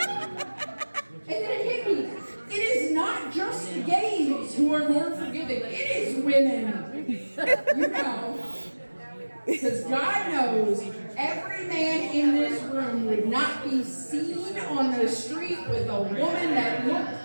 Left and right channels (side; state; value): both; inverted; correlation -1.00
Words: And then it hit me. It is not just the gays who are more forgiving. It is women. You know. Because God knows every man in this room would not be seen on the street with a woman that looked